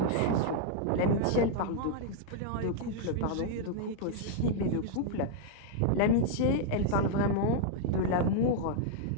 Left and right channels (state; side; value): different; both; correlation -0.01